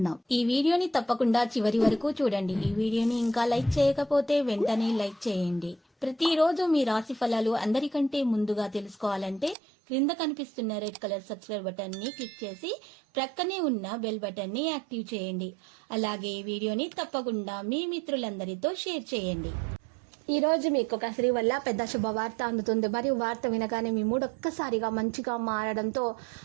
ఈ వీడియోని తప్పకుండా చివరి వరకు చూడండి. ఈ వీడియోని ఇంకా లైక్ చేయకపోతే వెంటనే లైక్ చేయండి. ప్రతిరోజు మీ రాశి ఫలాలు అందరికంటే ముందుగా తెలుసుకోవాలంటే క్రింద కనిపిస్తున్న రెడ్ కలర్ సబ్స్క్రైబ్ బటన్ ని క్లిక్ చేసి ప్రక్కనే ఉన్న బెల్ బటన్ ని యాక్టివ్ చేయండి. అలాగే ఈ వీడియోని తప్పకుండా మీ మిత్రులందరితో షేర్ చేయండి. ఈ రోజు మీకు ఒక స్త్రీ వల్ల పెద్ద శుభవార్త అందుతుంది. మరియు వార్త వినగానే మీ మూడు ఒక్కసారిగా మంచిగా మారడంతో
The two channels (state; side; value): drops out; left; at 9.6 s